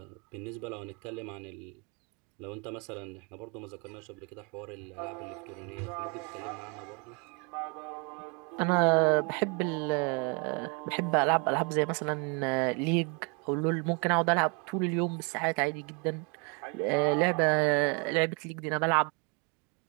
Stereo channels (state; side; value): quieter; left; 33.7 dB